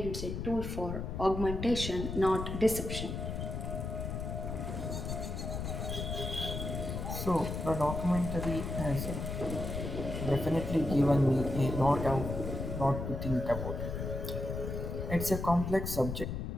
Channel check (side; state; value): left; noise; rumble, 4 dB below the sound